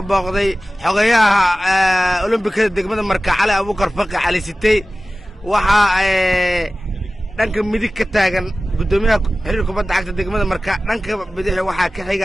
booqday xogayaha Olombikada degmada Marka Cali Abuukar Faqi Cali Sitey waxa dhanka midig ka taagan gudoomiyaha xiriirka kubadda cagta degmada Marka dhanka bidix waxa ka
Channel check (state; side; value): normal; both; correlation 0.97